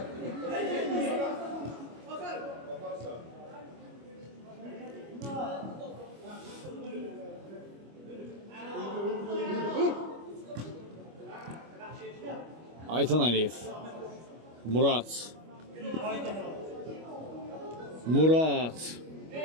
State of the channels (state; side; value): late; left; 25 ms